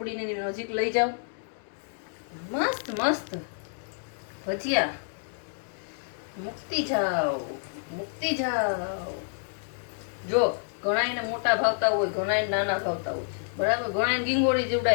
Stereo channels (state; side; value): silent; right; digital silence